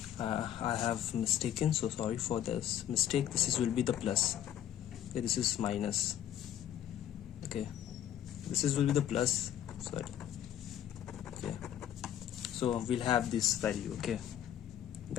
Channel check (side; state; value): right; quieter; 10.8 dB